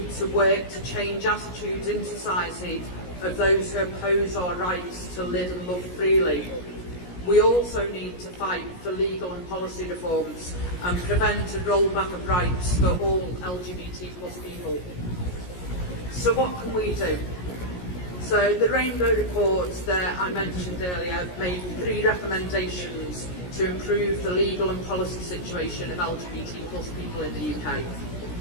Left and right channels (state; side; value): late; right; 17 ms